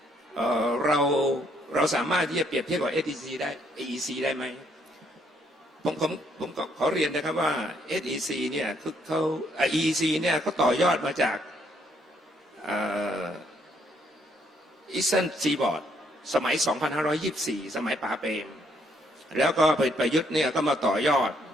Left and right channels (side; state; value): both; normal; correlation 0.70